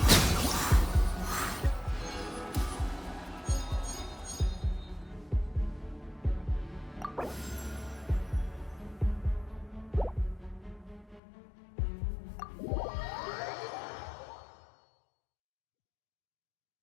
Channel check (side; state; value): right; drops out; at 11.2 s